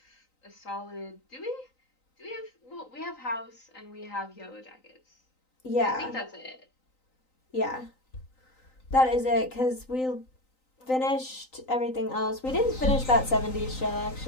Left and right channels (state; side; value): late; right; 3.9 ms